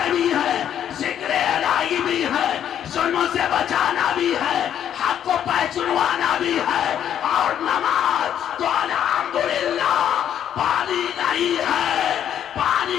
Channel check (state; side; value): quieter; right; 9.8 dB